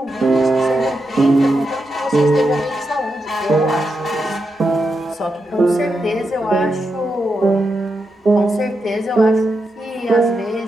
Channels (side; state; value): both; normal; correlation 0.86